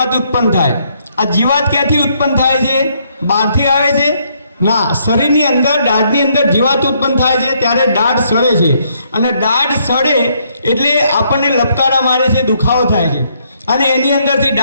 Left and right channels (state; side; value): inverted; both; correlation -0.71